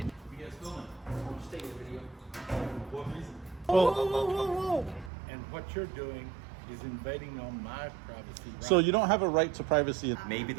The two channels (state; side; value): drops out; left; at 5.1 s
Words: Stay in the video. What reason? Whoa, whoa, whoa, whoa. And what you're doing is invading on my privacy. Right? So you don't have a right to privacy. Maybe